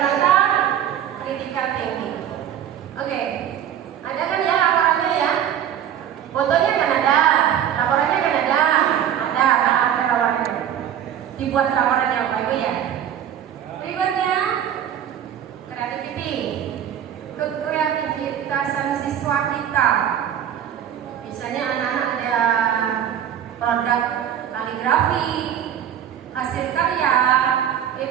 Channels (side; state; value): left; quieter; 9.9 dB